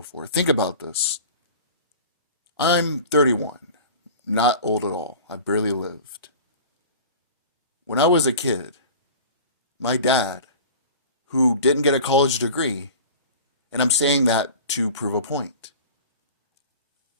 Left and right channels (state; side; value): inverted; both; correlation -0.38